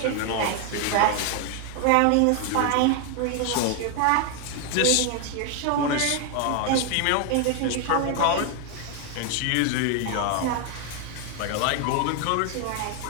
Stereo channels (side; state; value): both; different; correlation 0.00